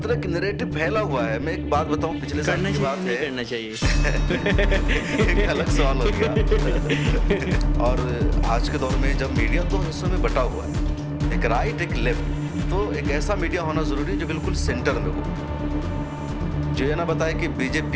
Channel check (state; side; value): identical; both; correlation 1.00